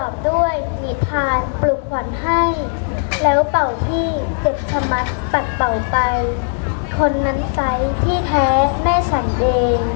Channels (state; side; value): silent; right; digital silence